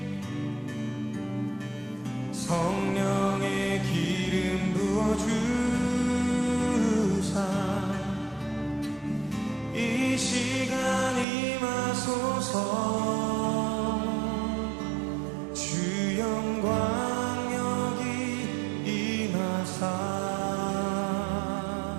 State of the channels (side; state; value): left; drops out; at 11.2 s